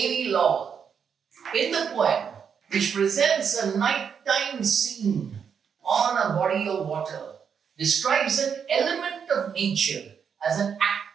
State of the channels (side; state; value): left; quieter; 7.0 dB